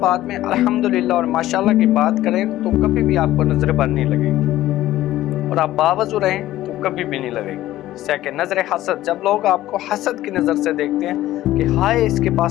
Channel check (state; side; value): quieter; right; 14.7 dB